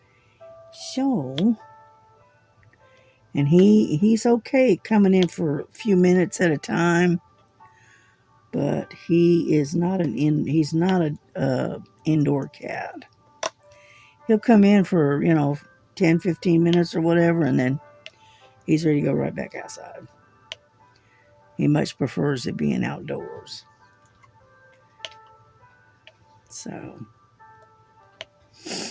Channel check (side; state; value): both; identical; correlation 1.00